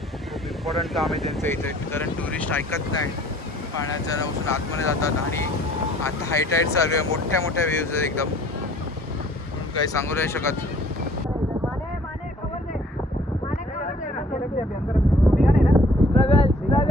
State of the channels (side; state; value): both; normal; correlation 0.56